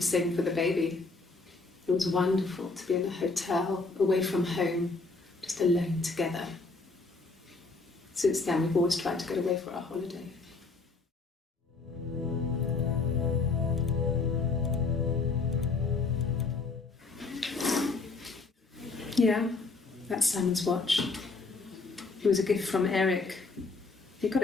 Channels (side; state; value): right; quieter; 3.9 dB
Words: saving for the baby. It was wonderful to be in a hotel, away from home, just alone together. Since then, we've always tried to get away for our holiday. Yeah, that's Simon's watch. It was a gift from Eric. He got